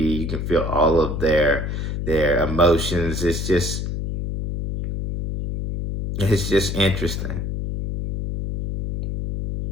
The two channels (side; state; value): left; noise; hum, 3 dB below the sound